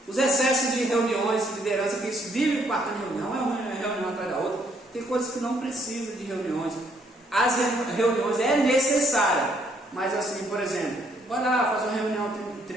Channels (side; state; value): both; normal; correlation 0.68